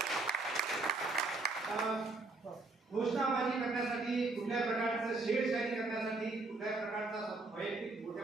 घोषणाबाजी करण्यासाठी, कुठल्या प्रकारचं शेरशाही करण्यासाठी, कुठल्या प्रकारचा वैयक्तिक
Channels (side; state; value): left; quieter; 3.3 dB